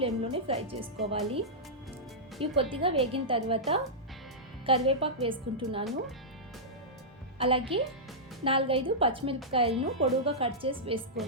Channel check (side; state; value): both; normal; correlation -0.12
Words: ఫ్రై చేసుకోవాలి. ఇవి కొద్దిగా వేగిన తర్వాత కరివేపాకు వేసుకుంటున్నాను. అలాగే 4-5 పచ్చిమిరపకాయలను పొడవుగా కట్ చేసి